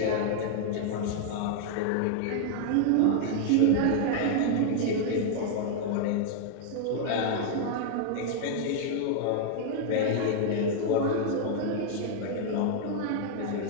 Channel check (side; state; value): both; different; correlation -0.01